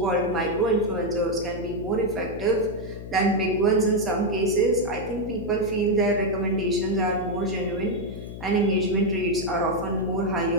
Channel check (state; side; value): noise; left; hum, 11 dB below the sound